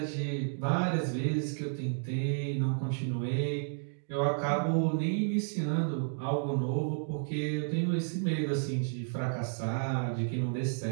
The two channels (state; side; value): silent; left; digital silence